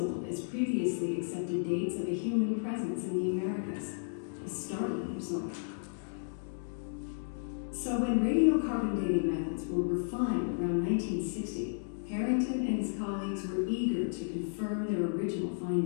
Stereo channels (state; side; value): silent; right; digital silence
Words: as previously accepted dates of a human presence in the Americas, a startling result. So when radiocarbon dating methods were refined around 1960, Harrington and his colleagues were eager to confirm their original